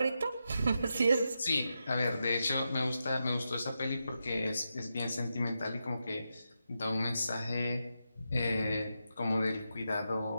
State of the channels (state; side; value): inverted; both; correlation -0.86